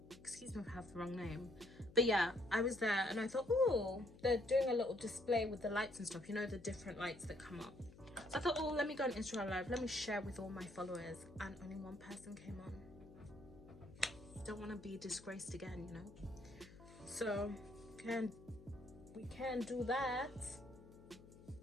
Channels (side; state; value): left; noise; hum, 19 dB below the sound